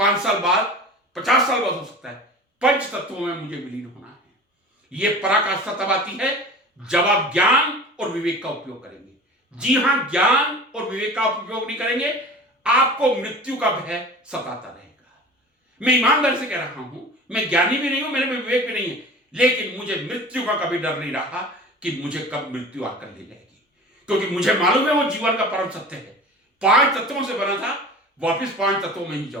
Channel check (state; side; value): normal; both; correlation 0.39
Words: साल बाद, 50 साल बाद हो सकता है, पंच तत्वों में मुझे विलीन होना है। ये पराकाष्ठा तब आती है जब आप ज्ञान और विवेक का उपयोग करेंगे। जी हां, ज्ञान और विवेक का उपयोग नहीं करेंगे, आपको मृत्यु का भय सताता रहेगा। मैं ईमानदारी से कह रहा हूं, मैं ज्ञानी भी नहीं हूं, मेरे में विवेक भी नहीं है, लेकिन मुझे मृत्यु का कभी डर नहीं रहा कि मुझे कब मृत्यु आकर ले जाएगी, क्योंकि मुझे मालूम है वो जीवन का परम सत्य है। 5 तत्वों से बना था, वापिस 5 तत्वों में ही